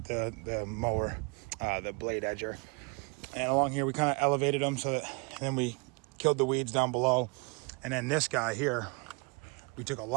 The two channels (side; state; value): left; quieter; 31.2 dB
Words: the mower, the blade edger. And along here, we kind of elevated them so that, and then we killed the weeds down below. And then this guy here, we took a